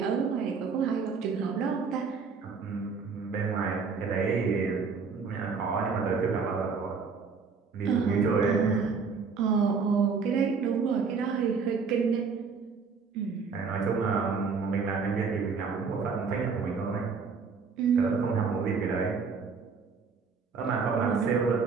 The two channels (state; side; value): quieter; left; 5.2 dB